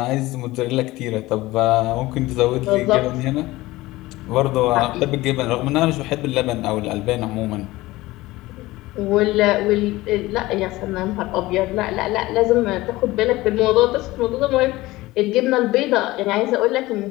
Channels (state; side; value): quieter; right; 18.8 dB